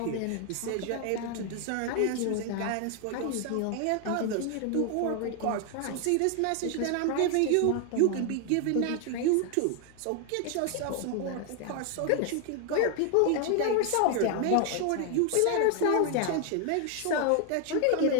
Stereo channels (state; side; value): different; both; correlation 0.00